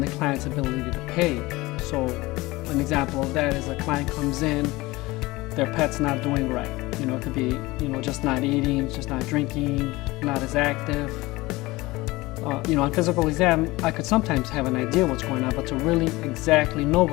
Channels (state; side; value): quieter; right; 20.8 dB